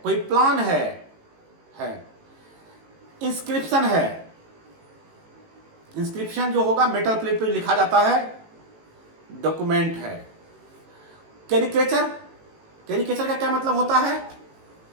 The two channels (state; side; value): late; left; 18 ms